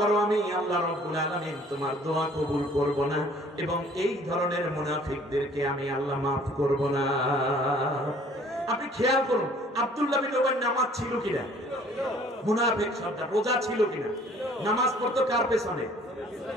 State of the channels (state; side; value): normal; both; correlation 0.55